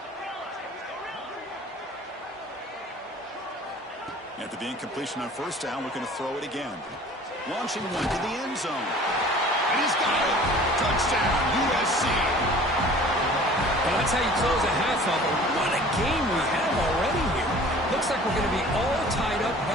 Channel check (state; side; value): normal; both; correlation 0.47